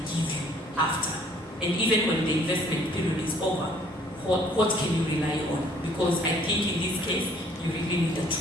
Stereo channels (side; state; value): both; normal; correlation 0.59